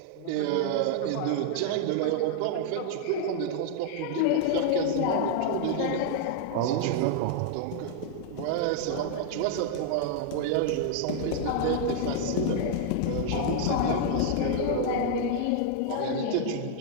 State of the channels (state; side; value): different; both; correlation 0.00